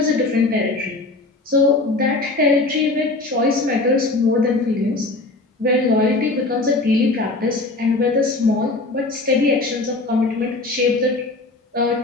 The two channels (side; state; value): right; quieter; 3.1 dB